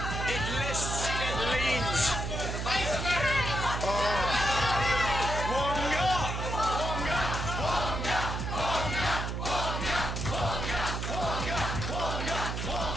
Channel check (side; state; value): right; noise; hum, 3 dB below the sound